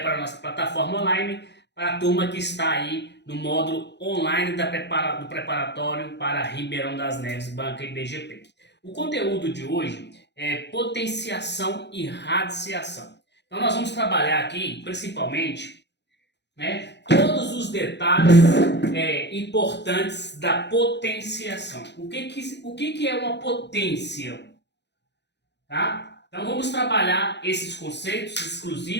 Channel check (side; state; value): right; late; 0.50 ms